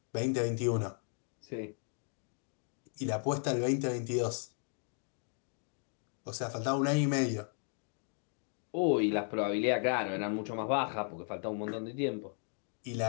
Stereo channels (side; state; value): right; silent; 54 dB below the other